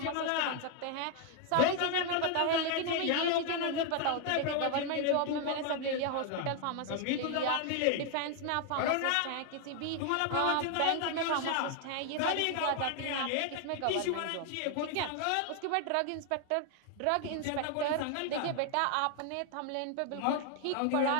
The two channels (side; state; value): both; different; correlation 0.00